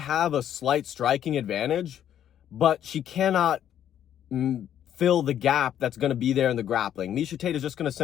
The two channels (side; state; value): right; quieter; 10.4 dB